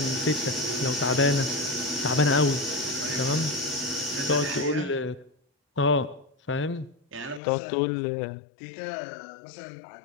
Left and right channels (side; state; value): right; drops out; at 7.4 s